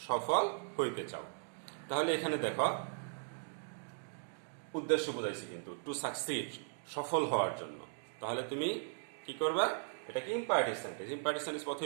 সফল হইতে চাও। তাহলে এখানে দেখো উদ্দেশ্য বোঝাইছি কিন্তু, টু সাকসিড, সফল হওয়ার জন্য। তাহলে তুমি কি করবা? এটাকে ইম্পারেটিভ সেন্টেন্স। ইম্পারেটিভ সেন্টেন্স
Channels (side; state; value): left; silent; digital silence